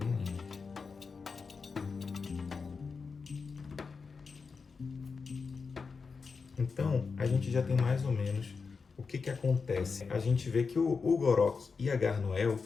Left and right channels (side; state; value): right; quieter; 5.0 dB